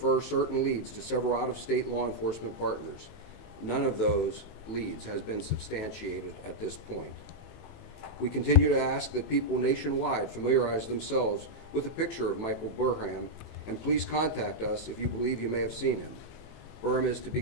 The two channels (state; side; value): late; right; 18 ms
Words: certain leads to several out-of-state law enforcement partners. None of those leads has been substantiated at this point. We continue to ask that people nationwide familiarize themselves with a picture of Michael Burham, and please contact us if you believe you may have seen him. Burham is to be